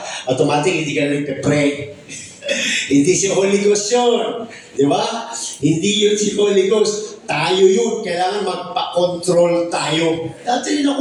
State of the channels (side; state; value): both; identical; correlation 1.00